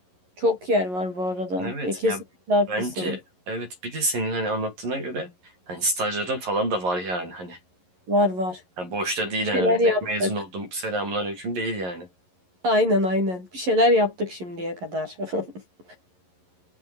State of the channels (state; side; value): late; left; 11 ms